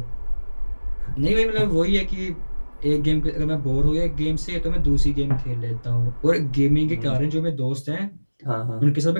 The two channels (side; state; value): both; inverted; correlation -1.00